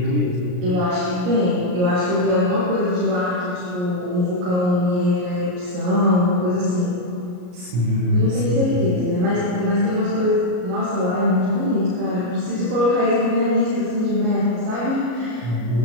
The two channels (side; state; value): left; late; 33 ms